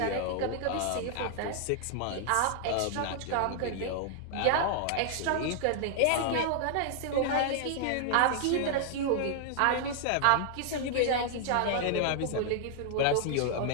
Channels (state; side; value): different; both; correlation 0.00